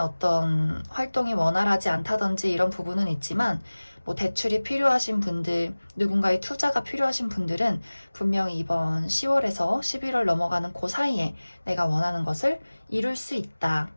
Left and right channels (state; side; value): inverted; both; correlation -1.00